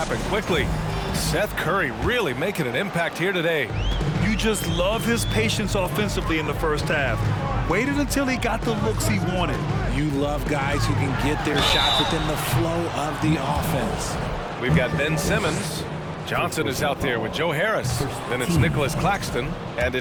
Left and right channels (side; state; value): both; identical; correlation 1.00